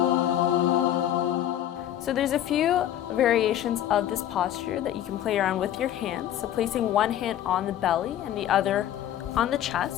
So there's a few variations of this posture that you can play around with your hands. So placing one hand on the belly and the other on the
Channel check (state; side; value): quieter; right; 11.7 dB